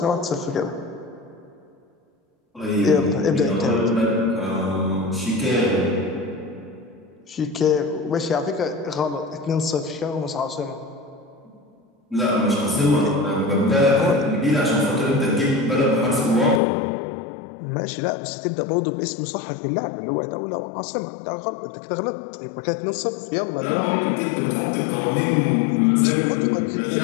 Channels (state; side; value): drops out; right; at 16.6 s